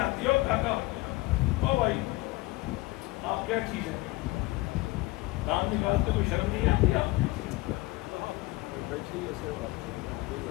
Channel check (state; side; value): quieter; right; 21.4 dB